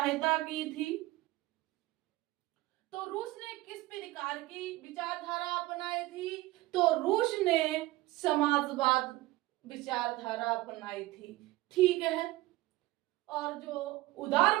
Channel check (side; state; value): left; quieter; 18.6 dB